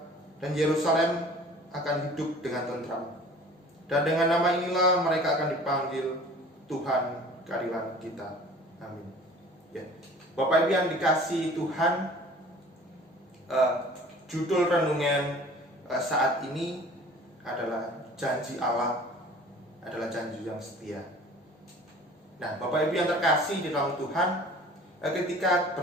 dan Yerusalem akan hidup dengan tentram. Dan dengan nama inilah mereka akan dipanggil Tuhan keadilan kita. Amin. Ya. Bapak Ibu yang dikasihi Tuhan, judul renungan saat ini adalah janji Allah adalah janji yang setia. Nah, Bapak Ibu yang terkasih di dalam Tuhan, ketika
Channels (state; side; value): normal; both; correlation 0.46